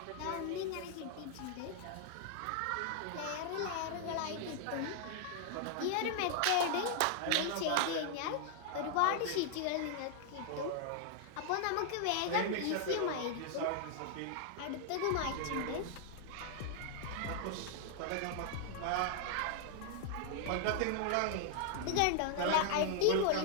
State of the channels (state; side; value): different; both; correlation 0.00